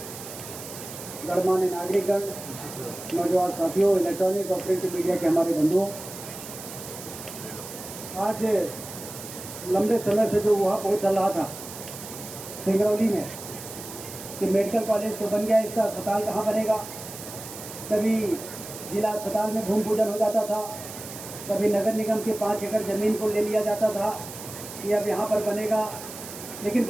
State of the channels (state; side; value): noise; right; hiss, 12 dB below the sound